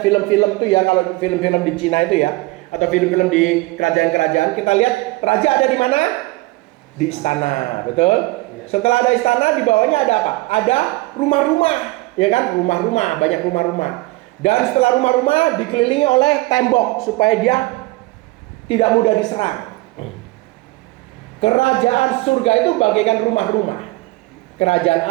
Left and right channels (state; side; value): quieter; left; 21.9 dB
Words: film-film tuh ya, kalau film-film di Cina itu ya, atau film-film di kerajaan-kerajaan, kita lihat raja ada di mana? Di istana, betul? Setelah ada istana, di bawahnya ada apa? Ada rumah-rumah, ya kan? Rumah-rumah, banyak rumah-rumah. Dan setelah rumah-rumah dikelilingi oleh tembok supaya dia tidak mudah diserang. Kerajaan surga itu bagaikan rumah-rumah. Kerajaan